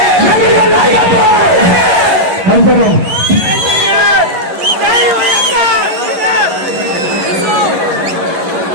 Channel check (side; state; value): left; late; 11 ms